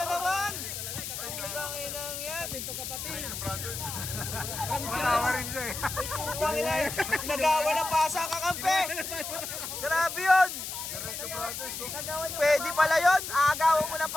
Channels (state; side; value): noise; left; hiss, 6 dB below the sound